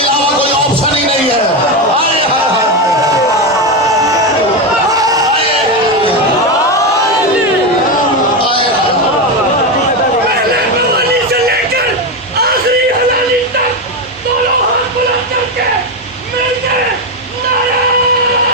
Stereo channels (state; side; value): normal; both; correlation 0.12